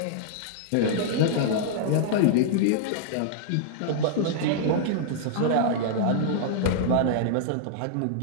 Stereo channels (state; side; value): different; both; correlation -0.01